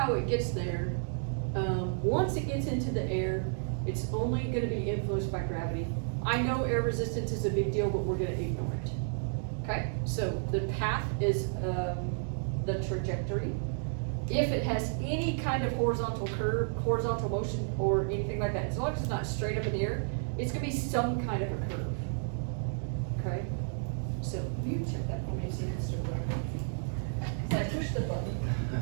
it gets there, once it gets into the air, it's only going to be influenced by gravity. I know air resistance is a big deal, but we're going to ignore it. Okay, so the path is the trajectory. If it has any kind of horizontal curve, horizontal motion, or anything like that, as long as it's not straight up in the air, it's going to be some kind of a curve. Okay, so you check that for me, see if it's still working. I pushed the button.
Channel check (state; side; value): silent; left; digital silence